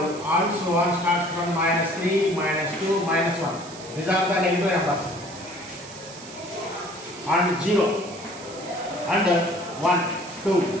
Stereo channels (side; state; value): right; noise; hiss, 16 dB below the sound